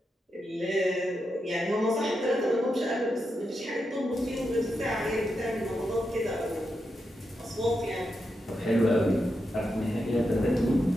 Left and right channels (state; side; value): normal; both; correlation 0.86